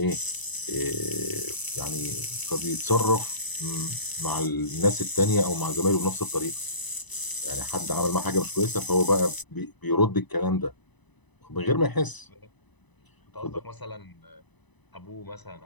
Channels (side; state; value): right; late; 1.0 ms